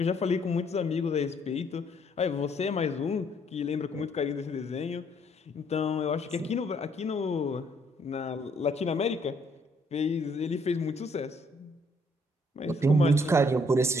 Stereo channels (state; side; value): normal; both; correlation 0.67